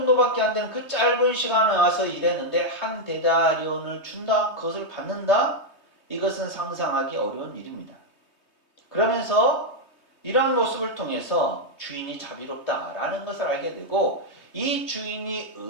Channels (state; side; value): late; right; 3.2 ms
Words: 안 되는 그 짧은 시간에 와서 일했는데 한 데나리온을 준다? 그것을 받는다? 이것은 상상하기 어려운 일입니다. 그러면서 이러한 모습을 통해서 주인이 자비롭다라는 것을 알게 되고 이 주인이